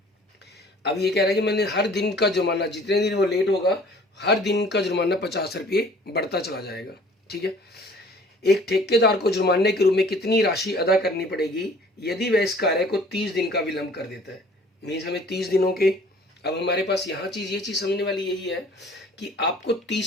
अब ये कह रहा है कि मैंने हर दिन का जुर्माना, जितने दिन वो लेट होगा हर दिन का जुर्माना 50 रुपये बढ़ता चला जाएगा, ठीक है। एक ठेकेदार को जुर्माने के रूप में कितनी राशि अदा करनी पड़ेगी यदि वह इस कार्य को 30 दिन का विलंब कर देता है। मीन्स हमें 30 दिनों के, अब हमारे पास यहाँ ये चीज समझने वाली यही है कि आपको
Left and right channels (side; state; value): both; normal; correlation 0.52